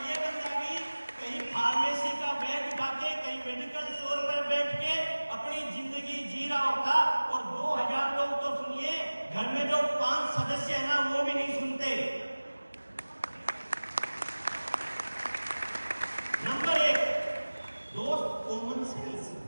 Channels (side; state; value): both; inverted; correlation -1.00